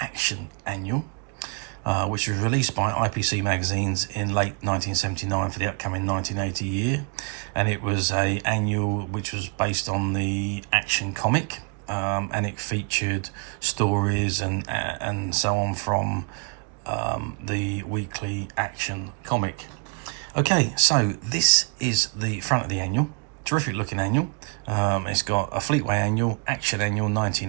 Action Annual, which was released by IPC Magazines in late 1979 for the upcoming 1980 year, and it was an annual which was based on the Action comic, and it featured stories and so on from the weekly Action comic. Okay, so this is the front of the annual. Terrific looking annual. It's got a Fleetway Annual, Action Annual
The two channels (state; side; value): quieter; left; 37.4 dB